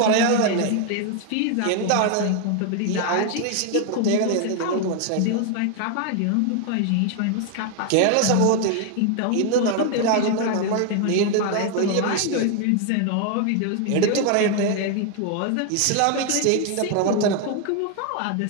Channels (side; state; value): both; different; correlation 0.01